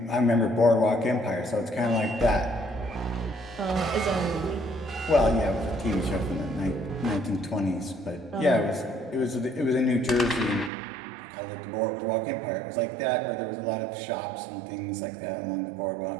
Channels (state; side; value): drops out; left; at 10.7 s